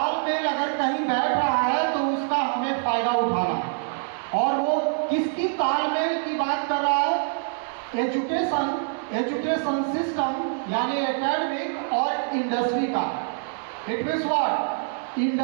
अगर कहीं बैठ रहा है तो उसका हमें फायदा उठाना, और वो किसकी तालमेल की बात कर रहा है? एजुकेशन सिस्टम यानी एकेडमिक और इंडस्ट्री का। It means what?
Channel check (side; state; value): left; silent; digital silence